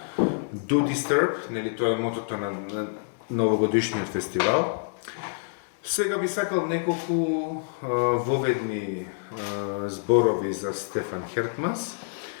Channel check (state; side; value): silent; right; 60 dB below the other